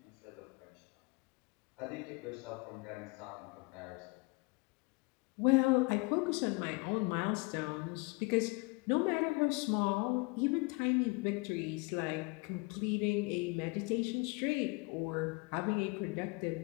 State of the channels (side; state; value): right; quieter; 28.0 dB